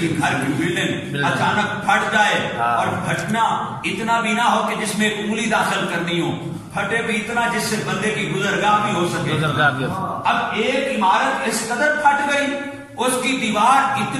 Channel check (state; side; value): identical; both; correlation 1.00